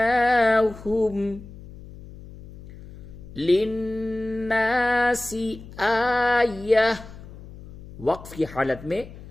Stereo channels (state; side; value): noise; left; hum, 16 dB below the sound